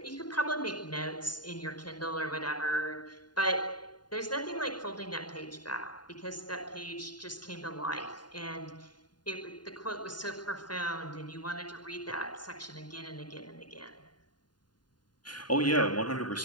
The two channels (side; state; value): right; late; 0.70 ms